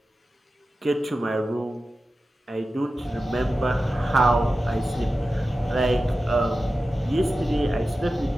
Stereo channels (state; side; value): normal; both; correlation 0.93